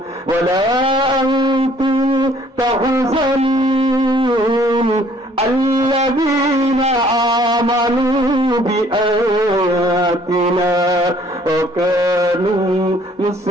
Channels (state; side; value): normal; both; correlation 0.59